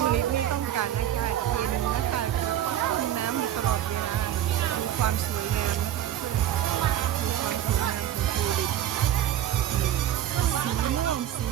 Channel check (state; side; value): quieter; left; 11.3 dB